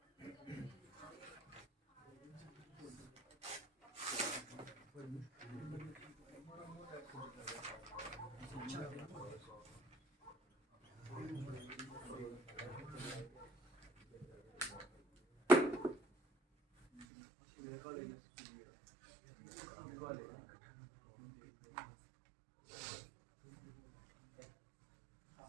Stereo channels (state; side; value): drops out; left; at 17.1 s